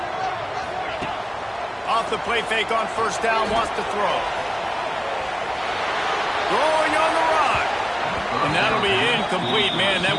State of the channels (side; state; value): both; identical; correlation 1.00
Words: Off the play fake on first down. Wants to throw. Throwing on the run. And that'll be incomplete, man. That